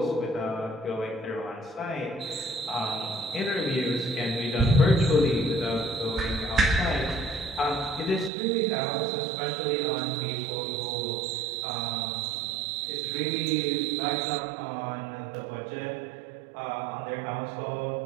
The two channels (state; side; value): drops out; left; at 8.3 s